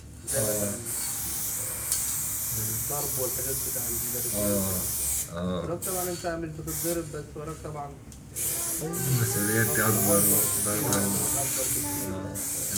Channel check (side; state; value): both; identical; correlation 1.00